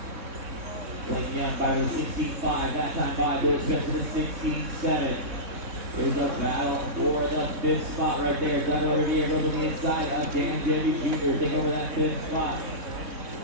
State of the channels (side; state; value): left; late; 3.6 ms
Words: Blake Young by the 16.5. That time by Billy Spence with the 16.7. Here's a battle for the 5th spot right there. Doug over here goes on the inside of Dan Jevy Jr. Take over that 5th spot.